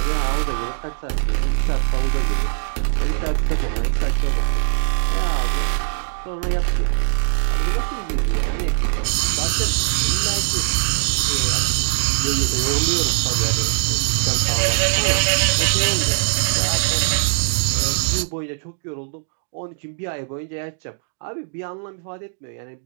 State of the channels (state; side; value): silent; left; digital silence